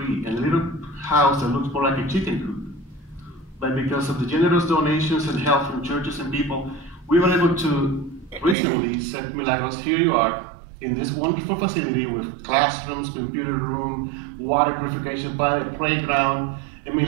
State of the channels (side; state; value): left; drops out; at 8.6 s